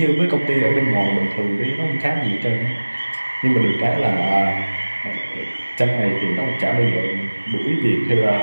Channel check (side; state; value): both; inverted; correlation -1.00